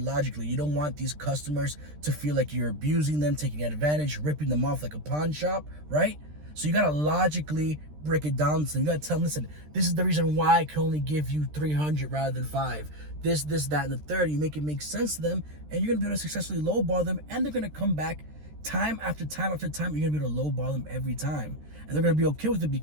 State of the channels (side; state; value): left; late; 13 ms